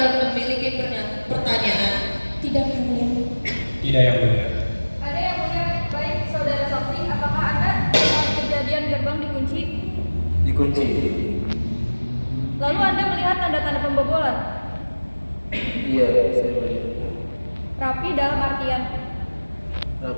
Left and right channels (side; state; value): both; inverted; correlation -1.00